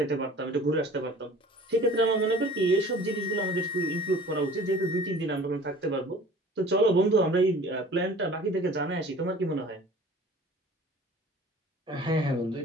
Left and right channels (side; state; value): both; normal; correlation 0.46